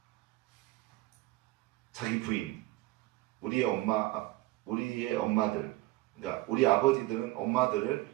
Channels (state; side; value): quieter; left; 18.9 dB